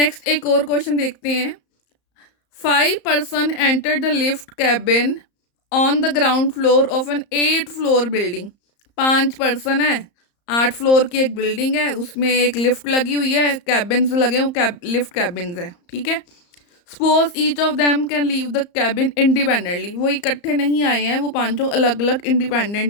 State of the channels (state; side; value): late; right; 34 ms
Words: एक और क्वेश्चन देखते हैं। 5 person enter the lift cabin on the ground floor of an 8 floor building. 5 person है, 8 फ्लोर की एक बिल्डिंग है, उसमें एक लिफ्ट लगी हुई है, कैबिन्स लगे हुए, लिफ्ट कैबिन्स है, ठीक है। Suppose each of them can leave the cabin independently. वो इकट्ठे नहीं आए हैं, वो पांचों अलग अलग